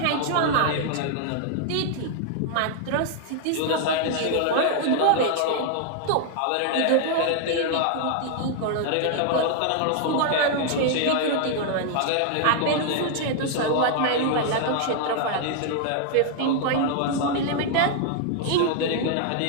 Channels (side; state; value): both; different; correlation 0.00